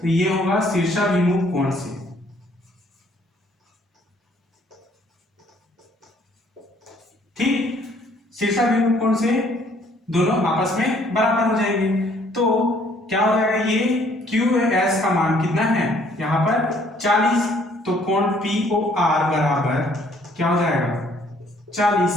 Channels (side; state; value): both; normal; correlation 0.62